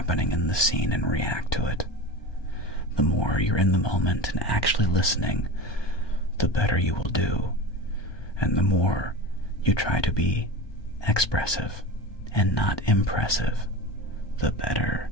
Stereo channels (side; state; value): right; late; 1.2 ms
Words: in the scene and react to it. The more you're in the moment and actually listening, the better you will do. And the more you try to be expressive and not impressive, the better